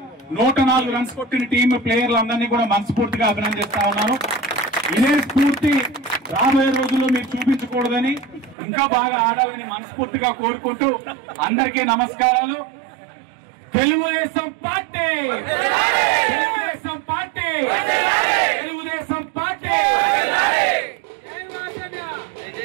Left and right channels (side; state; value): left; drops out; at 8.6 s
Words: 104 రన్స్ కొట్టిన టీం ప్లేయర్లందరినీ కూడా మనస్ఫూర్తిగా అభినందిస్తా ఉన్నాను. ఇదే స్ఫూర్తి రాబోయే రోజుల్లో మీరు చూపించకూడదని, ఇంకా బాగా ఆడాలని మనస్ఫూర్తిగా కోరుకుంటూ అందరికీ నమస్కారాలు. తెలుగుదేశం పార్టీ